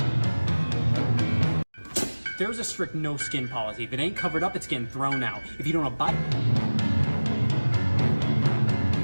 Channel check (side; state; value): both; inverted; correlation -1.00